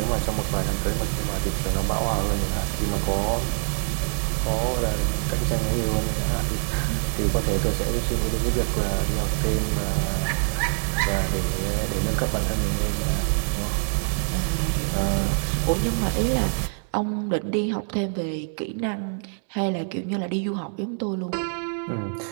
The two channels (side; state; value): left; silent; digital silence